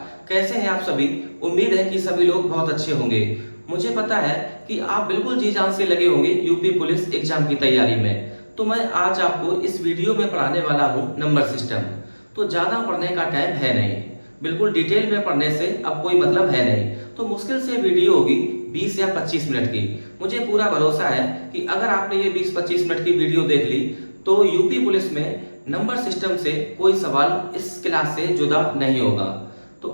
कैसे हैं आप सभी? उम्मीद है कि सभी लोग बहुत अच्छे होंगे। मुझे पता है कि आप बिल्कुल जी जान से लगे होंगे यूपी पुलिस एग्जाम की तैयारी में। तो मैं आज आपको इस वीडियो में पढ़ाने वाला हूं नंबर सिस्टम। तो ज़्यादा पढ़ने का टाइम है नहीं, बिल्कुल डिटेल में पढ़ने से अब कोई मतलब है नहीं। तो मुश्किल से वीडियो होगी 20 या 25 मिनट की। मुझे पूरा भरोसा है कि अगर आपने ये 20-25 मिनट की वीडियो देख ली तो यूपी पुलिस में नंबर सिस्टम से कोई सवाल इस क्लास से जुदा नहीं होगा। तो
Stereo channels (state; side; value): inverted; both; correlation -1.00